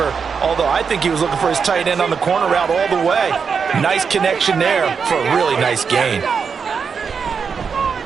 Although I think he was looking for his tight end on the corner route all the way. Nice connection there for a really nice gain.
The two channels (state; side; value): quieter; left; 6.0 dB